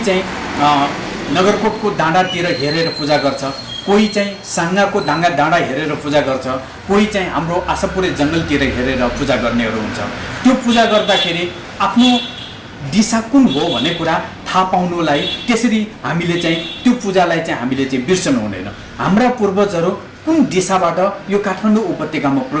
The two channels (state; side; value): identical; both; correlation 1.00